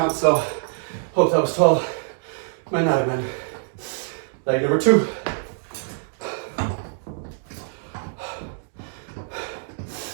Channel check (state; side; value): silent; left; digital silence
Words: so hope that was 12. Might not have been. Leg number 2.